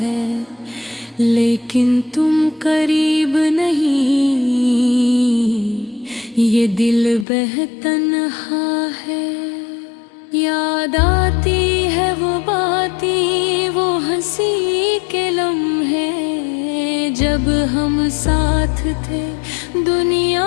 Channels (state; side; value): drops out; right; at 7.2 s